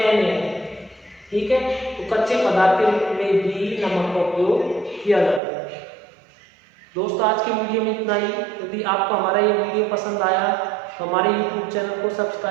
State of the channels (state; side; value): drops out; left; at 5.4 s